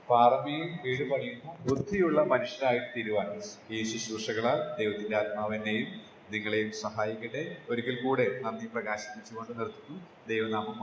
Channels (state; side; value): identical; both; correlation 1.00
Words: പാറമേൽ വീട് പണിയുന്ന ബുദ്ധിയുള്ള മനുഷ്യനായിട്ട് തീരുവാൻ ഈ ശുശ്രൂഷകളാൽ ദൈവത്തിന്റെ ആത്മാവിനെയും നിങ്ങളെയും സഹായിക്കട്ടെ. ഒരിക്കൽ കൂടെ നന്ദി പ്രകാശിപ്പിച്ചുകൊണ്ട് നിർത്തുന്നു. ദൈവനാമം